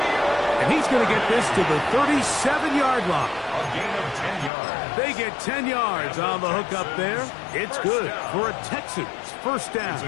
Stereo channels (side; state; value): right; drops out; at 4.5 s